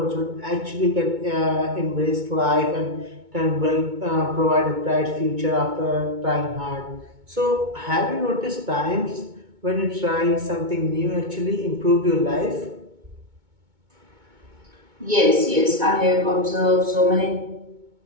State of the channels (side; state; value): left; late; 2.2 ms